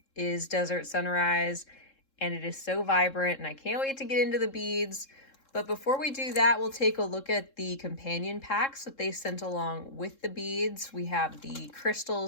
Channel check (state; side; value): late; right; 3.7 ms